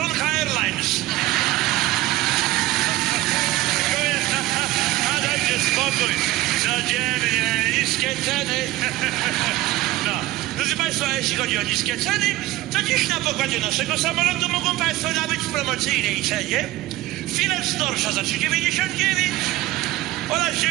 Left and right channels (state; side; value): quieter; left; 17.2 dB